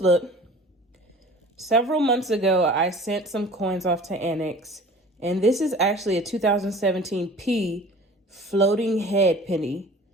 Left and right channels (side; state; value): both; normal; correlation 0.44